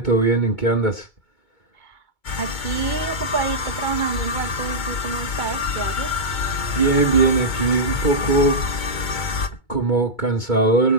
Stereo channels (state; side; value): late; right; 2.2 ms